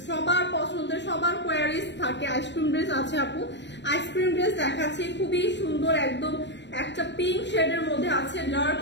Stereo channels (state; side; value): late; right; 0.52 ms